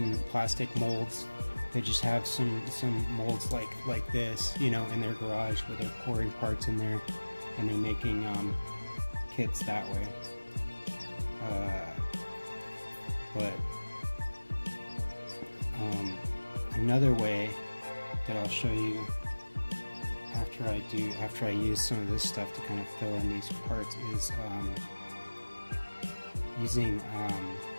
plastic molds. They just have some molds like this, you know, in their garage where they're pouring parts in there and they're making kits that way. But another way that I'll show you after I use some of this stuff to kind of fill in these parts is using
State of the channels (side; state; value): both; inverted; correlation -1.00